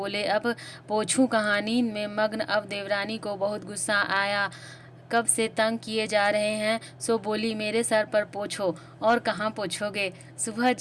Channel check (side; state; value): both; identical; correlation 1.00